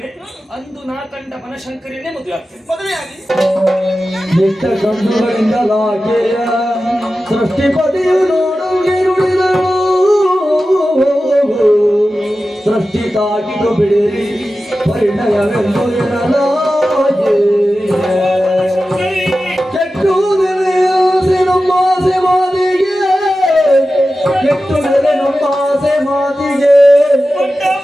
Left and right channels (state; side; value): normal; both; correlation 0.94